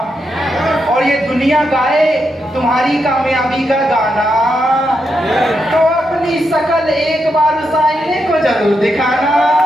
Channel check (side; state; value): both; normal; correlation 0.83